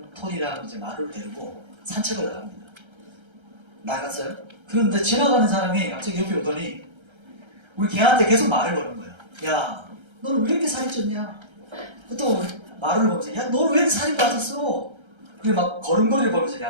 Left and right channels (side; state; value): left; late; 1.3 ms